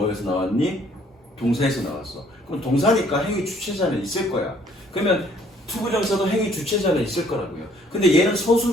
나왔니? 동사에서 나왔어. 그럼 동사니까 행위 주체자는 있을 거야. 그러면 투부정사도 행위 주체자는 있을 거라고요. 근데 얘는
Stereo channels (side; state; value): both; normal; correlation 0.62